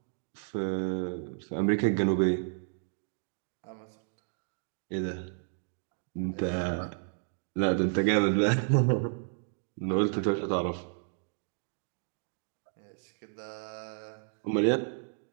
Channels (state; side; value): silent; left; digital silence